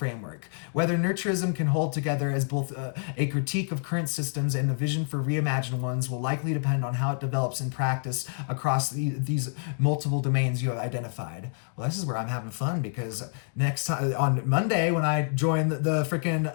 Whether nurturism can hold together as both a critique of current systems and the vision for reimagined ones will likely depend on how it develops in practice across these multiple domains you have identified. Well, this is where I'm having fun because next time, on Monday, when I join the freaking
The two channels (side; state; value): right; silent; 59 dB below the other